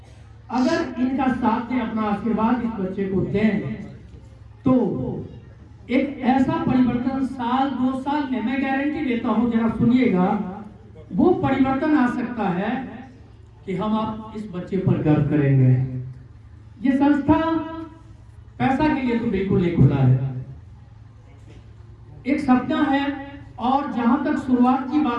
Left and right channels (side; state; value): both; identical; correlation 1.00